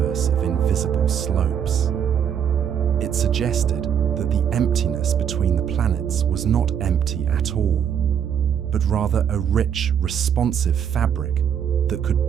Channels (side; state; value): left; quieter; 8.4 dB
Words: of invisible slopes. It suggested that the emptiness between the planets was not empty at all, but rather a rich, responsive fabric that